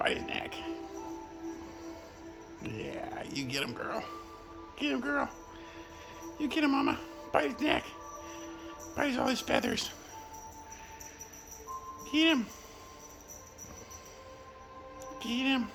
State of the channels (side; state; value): both; identical; correlation 1.00